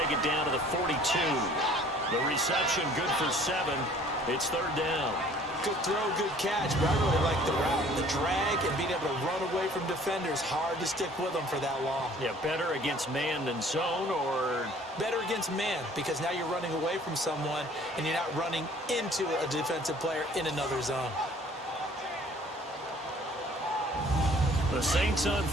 it down to the 42. The reception good for 7. It's 3rd down. Good throw, good catch, but I really like the route. The drag and being able to run away from defenders, hard to stick with them for that long. Yeah, better against man than zone, or? Better against man, because now you're running away from someone and you're not running into a defensive player in another zone. The Saints on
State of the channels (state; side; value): normal; both; correlation 0.54